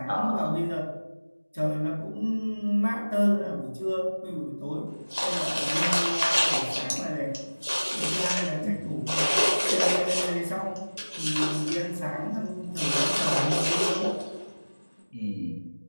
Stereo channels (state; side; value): inverted; both; correlation -1.00